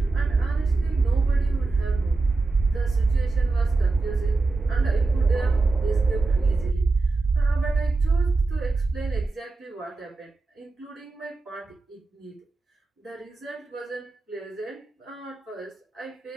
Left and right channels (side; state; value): left; quieter; 3.6 dB